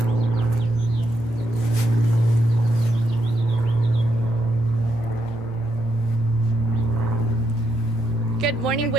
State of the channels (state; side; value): normal; both; correlation 0.79